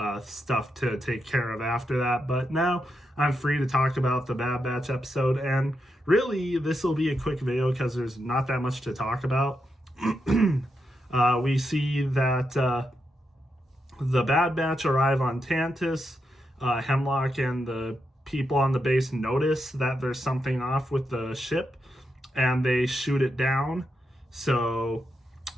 stuff to take care of after that. But now I'm free to talk about the Bad Batch episode, and really, this will be a quick video because there's not that much to talk about. We see that the Bad Batch arrive on Tantiss. Hemlock and the people on the base notice that there's something off with the ship, and they shoot it down. So,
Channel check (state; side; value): normal; both; correlation 0.84